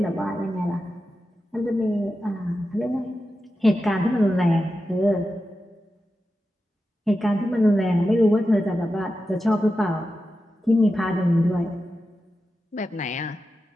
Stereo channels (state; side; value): normal; both; correlation 0.91